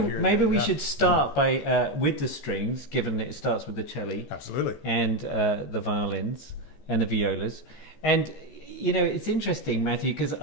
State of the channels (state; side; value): late; right; 14 ms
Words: we should start by with the strings, given that it starts with the cello, absolutely, and the violins and the violas. And it's interesting, Matthew, because